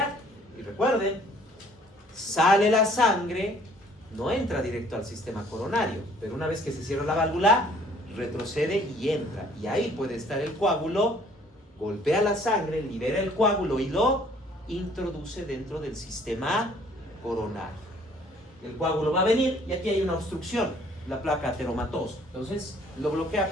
Y recuerden, sale la sangre, no entra directo al sistema coronario, pero una vez que se cierra la válvula, retrocede y entra. Y ahí puede estar el coágulo, golpea la sangre, libera el coágulo y lo introduce dentro del sistema coronario. El coágulo va a venir y aquí hay una obstrucción, la placa ateromatosa. Entonces lo bloquea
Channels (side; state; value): both; normal; correlation 0.58